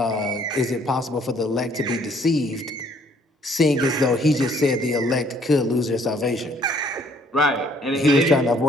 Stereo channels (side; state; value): both; normal; correlation 0.62